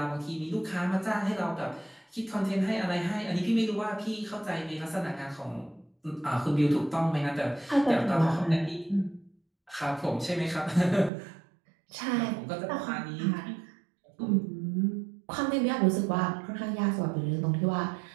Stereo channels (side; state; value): left; drops out; at 11.1 s